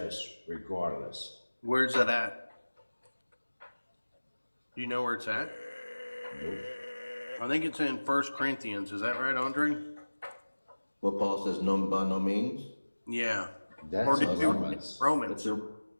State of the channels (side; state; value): both; inverted; correlation -1.00